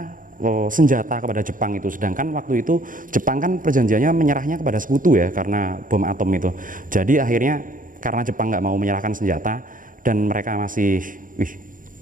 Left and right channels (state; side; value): late; left; 0.39 ms